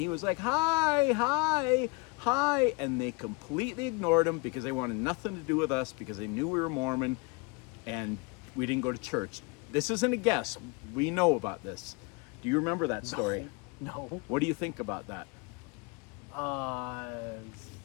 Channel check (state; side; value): quieter; right; 28.1 dB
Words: was like, "Hi, hi, hi," and they completely ignored him because they wanted nothing to do with us because they knew we were Mormon, and we didn't go to church. This isn't a guess. We know about this. Do you remember that story? No. What do you think about that?